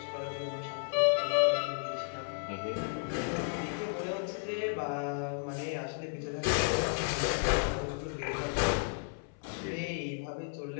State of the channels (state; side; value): silent; right; 55 dB below the other